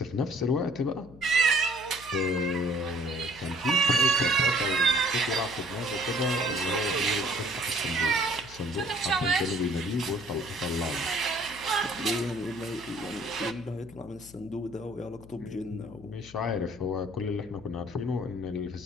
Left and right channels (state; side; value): noise; left; hum, 19 dB below the sound